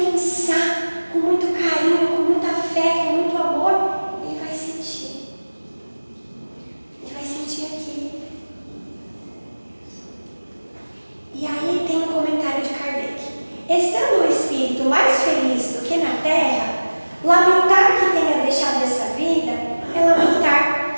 com muito carinho, com muita fé, com muito amor, ele vai sentir. Ele vai sentir aqui. E aí tem um comentário de Kardec. Estando o espírito mais feliz do que na terra, lamentar que tenha deixado essa vida é lamentar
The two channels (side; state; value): both; inverted; correlation -1.00